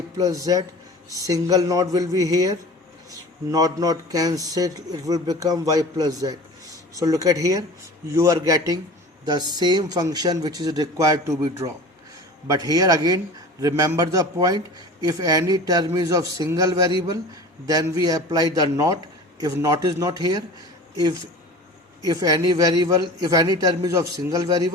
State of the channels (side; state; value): both; normal; correlation 0.38